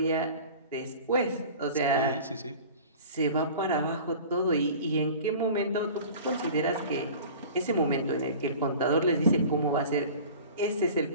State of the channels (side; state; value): both; inverted; correlation -0.41